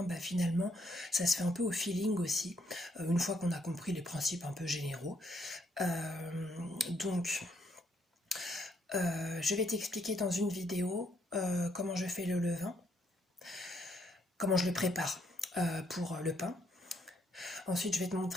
finalement ça se fait un peu au feeling aussi une fois qu'on a compris les principes un peu généraux. Donc je vais t'expliquer dans une vidéo comment je fais le levain, comment je le prépare pour le pain. Ensuite je vais te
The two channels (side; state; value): both; normal; correlation 0.72